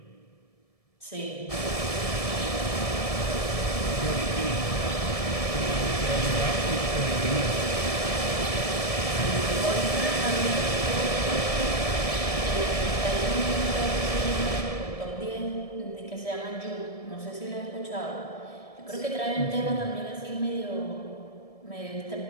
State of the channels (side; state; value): right; late; 1.7 ms